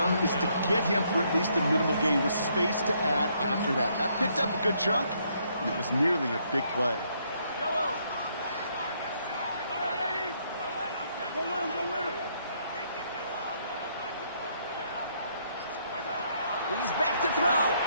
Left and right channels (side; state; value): both; inverted; correlation -0.71